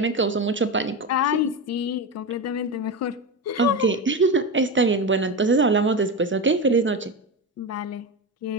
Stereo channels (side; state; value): both; normal; correlation 0.18